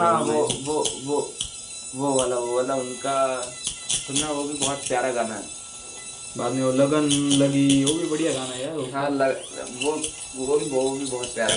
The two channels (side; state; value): both; identical; correlation 1.00